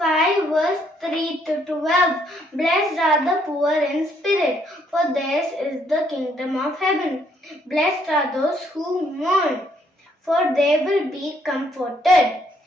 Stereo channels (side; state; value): both; normal; correlation 0.69